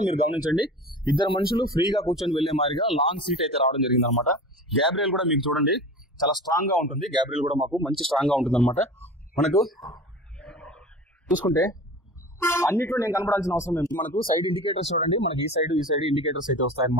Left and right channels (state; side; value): normal; both; correlation 0.35